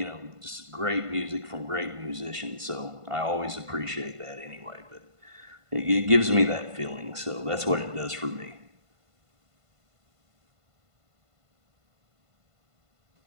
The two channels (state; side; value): late; left; 1.5 ms